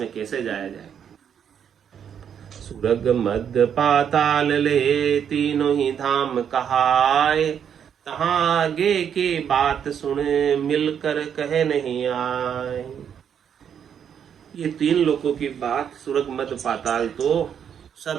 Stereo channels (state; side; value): quieter; left; 8.3 dB